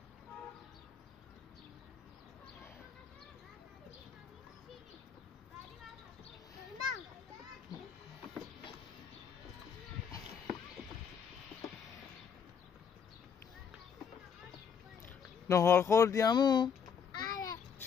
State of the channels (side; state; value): right; quieter; 7.0 dB